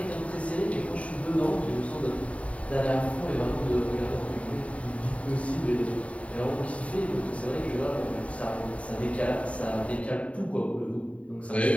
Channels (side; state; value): right; late; 0.065 ms